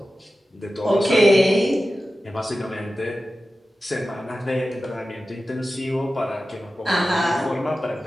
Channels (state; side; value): normal; both; correlation 0.94